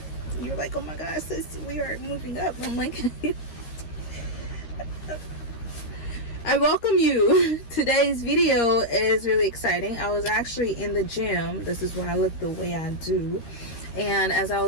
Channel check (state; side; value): late; right; 13 ms